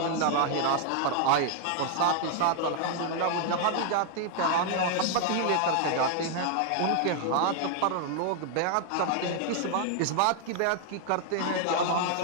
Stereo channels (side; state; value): both; different; correlation 0.00